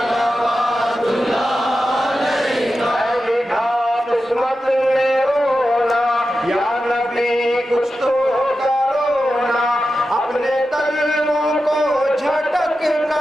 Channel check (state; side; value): normal; both; correlation 0.91